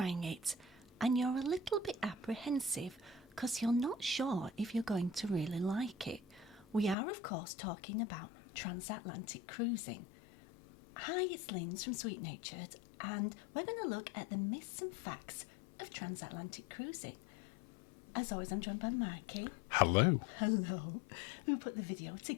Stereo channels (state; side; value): drops out; right; at 7.0 s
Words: it, and you're a little bit apprehensive because you're not sure if you're going to really like it. We are, of course, talking about Transatlantic Cruising. Hi, it's Linz from Sweet Natured, and we're going to look at the myths and facts of Transatlantic Cruising. As always, I'm joined by Mikey. Hello. Hello. Who put the video